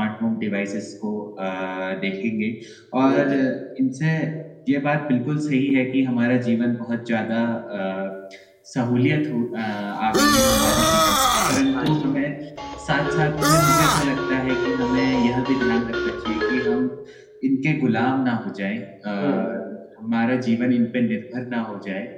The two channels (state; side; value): identical; both; correlation 1.00